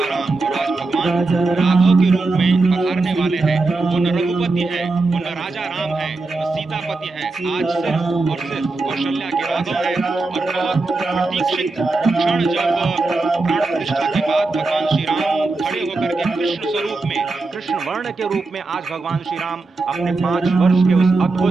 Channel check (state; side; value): quieter; left; 3.5 dB